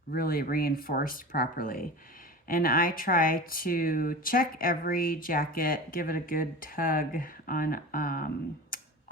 really reinforced properly. And I try to check every jacket, give it a good tug on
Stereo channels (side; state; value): both; normal; correlation 0.32